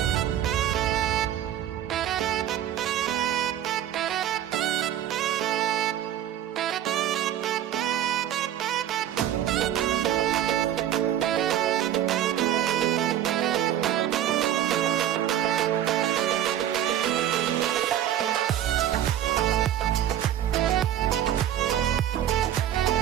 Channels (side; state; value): left; quieter; 11.3 dB